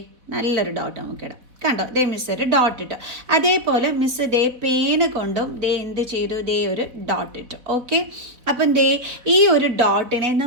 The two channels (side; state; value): left; late; 4.3 ms